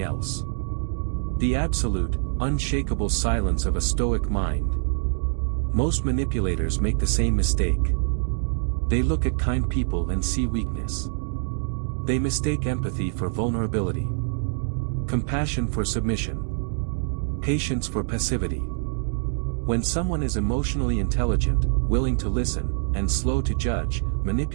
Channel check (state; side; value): silent; left; digital silence